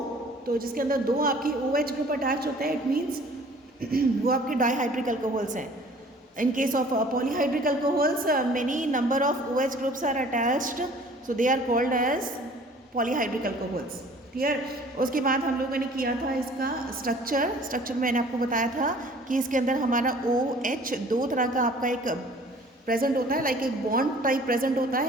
तो जिसके अंदर दो आपकी OH ग्रुप अटैच होते हैं, इट मीन्स वो आपके डाईहाइड्रिक अल्कोहल्स हैं। In case of polyhydric alcohols, many number of OH groups are attached, so they are called as polyhydric alcohols. Clear. उसके बाद हम लोगों ने किया था इसका स्ट्रक्चर मैंने आपको बताया था कि इसके अंदर हमारा OH दो तरह का आपका एक प्रेजेंट होता है, लाइक एक बॉन्ड टाइप प्रेजेंट होता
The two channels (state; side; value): normal; both; correlation 0.51